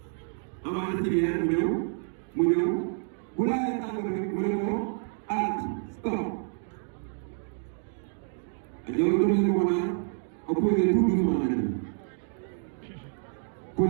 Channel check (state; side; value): silent; left; 55 dB below the other